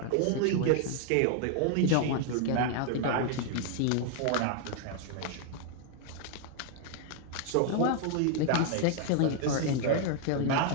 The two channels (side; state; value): both; different; correlation 0.00